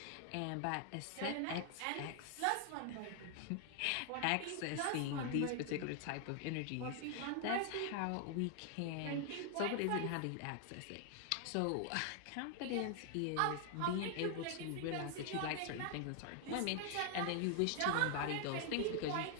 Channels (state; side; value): different; both; correlation 0.00